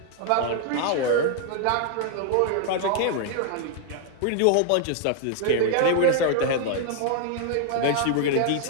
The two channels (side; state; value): both; different; correlation 0.00